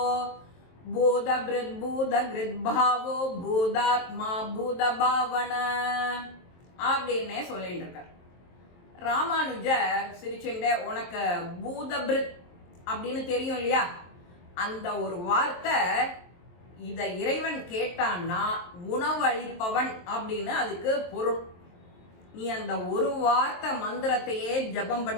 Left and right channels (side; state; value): right; late; 23 ms